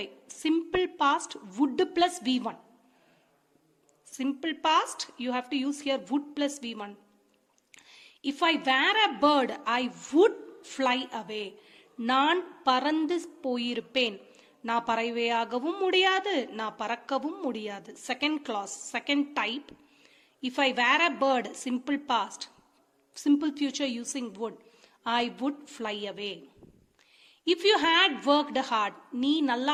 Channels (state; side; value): identical; both; correlation 1.00